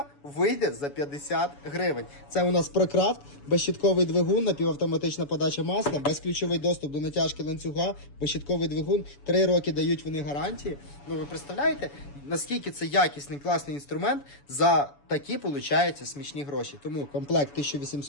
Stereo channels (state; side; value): late; right; 7.0 ms